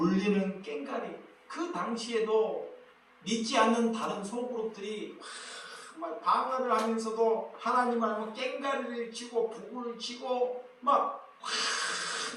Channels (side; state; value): both; identical; correlation 1.00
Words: 꽹과리, 그 당시에도 믿지 않는 다른 소그룹들이 막 방언을 하면서도 하나님 알고 꽹과리를 치고 북을 치고 막